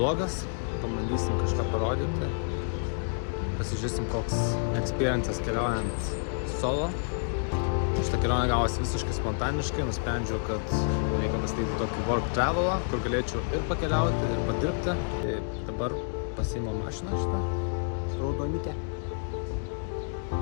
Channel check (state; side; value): silent; right; digital silence